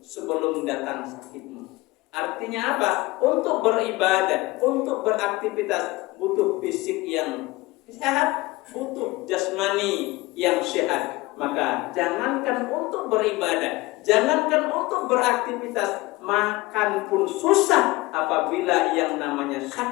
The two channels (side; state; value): right; quieter; 20.9 dB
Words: sebelum datang sakitmu. Artinya apa? Untuk beribadah, untuk beraktivitas butuh fisik yang sehat, butuh jasmani yang sehat. Maka jangankan untuk beribadah, jangankan untuk beraktivitas, makan pun susah apabila yang namanya